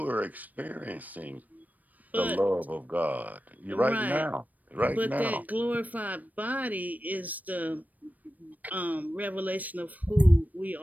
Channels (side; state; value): left; late; 0.080 ms